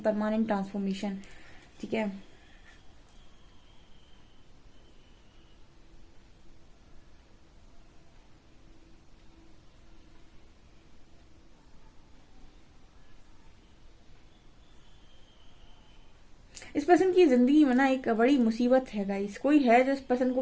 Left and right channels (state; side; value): identical; both; correlation 1.00